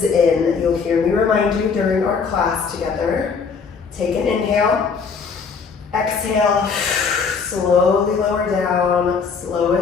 in. You'll hear me remind you during our class together. Take an inhale. Exhale, slowly lower down,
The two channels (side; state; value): right; quieter; 5.4 dB